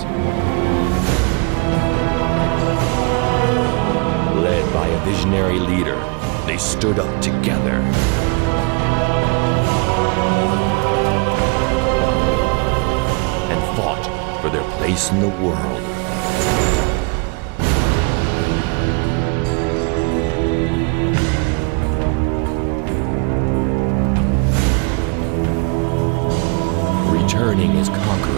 Led by a visionary leader, they stood up together. And fought for their place in the world. Returning as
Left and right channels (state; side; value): quieter; left; 32.6 dB